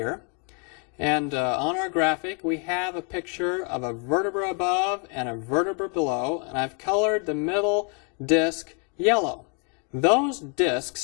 And on our graphic, we have a picture of a vertebra above and a vertebra below, and I've colored the middle disc yellow. Those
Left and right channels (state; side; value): quieter; right; 38.1 dB